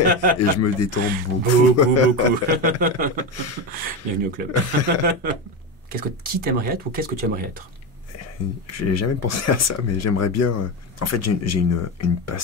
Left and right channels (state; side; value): normal; both; correlation 0.17